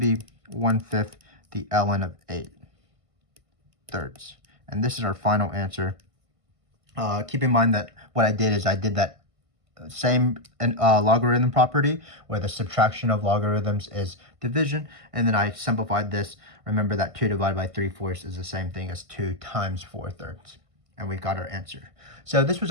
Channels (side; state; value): left; late; 1.5 ms